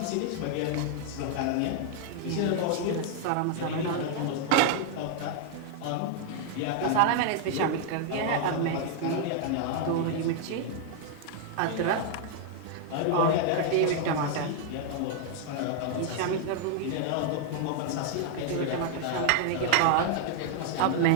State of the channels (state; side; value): different; both; correlation 0.00